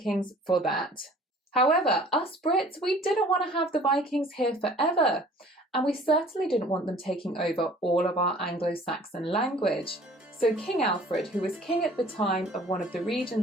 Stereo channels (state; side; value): normal; both; correlation 0.51